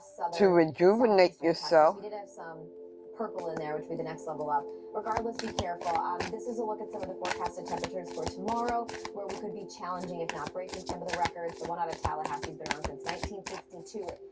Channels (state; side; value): identical; both; correlation 1.00